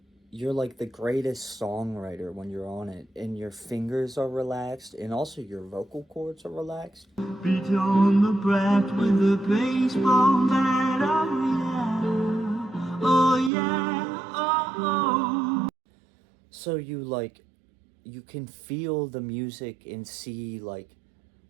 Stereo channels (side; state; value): left; drops out; at 13.5 s